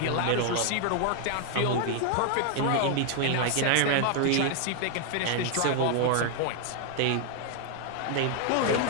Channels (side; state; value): both; different; correlation 0.00